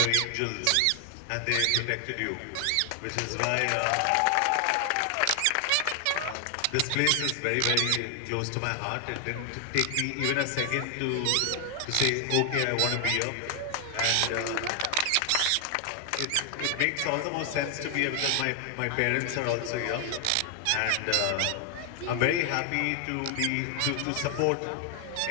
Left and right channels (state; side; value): different; both; correlation 0.00